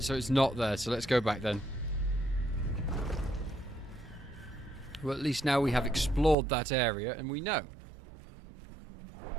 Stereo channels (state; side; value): drops out; left; at 6.4 s